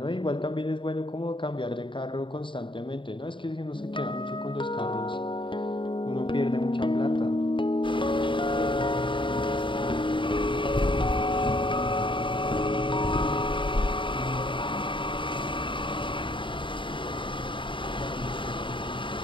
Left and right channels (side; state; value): right; late; 0.24 ms